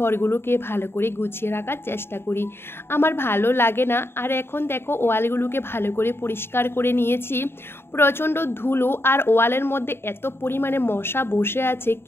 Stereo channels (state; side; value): late; right; 0.11 ms